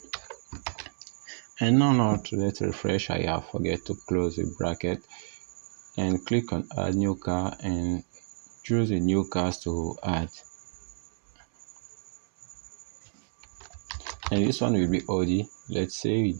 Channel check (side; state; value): left; silent; 58 dB below the other